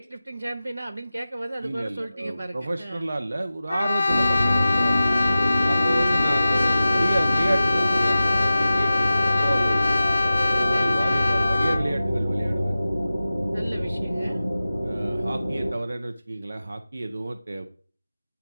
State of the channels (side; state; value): both; inverted; correlation -0.95